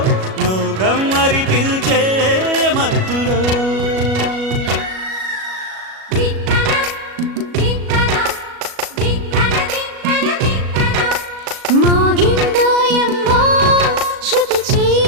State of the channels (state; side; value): late; left; 37 ms